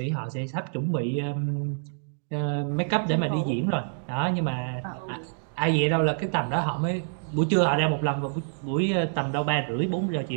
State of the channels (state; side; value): silent; left; digital silence